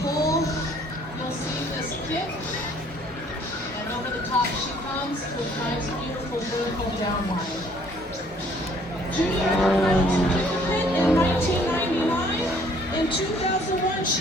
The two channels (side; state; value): both; normal; correlation 0.60